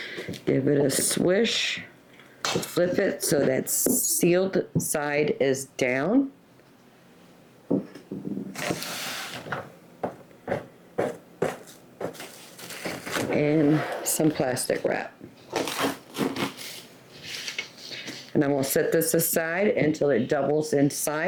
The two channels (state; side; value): identical; both; correlation 1.00